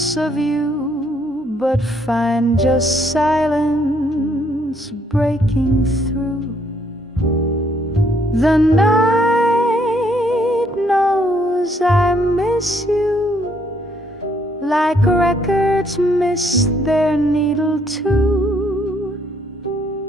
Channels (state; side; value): normal; both; correlation 0.68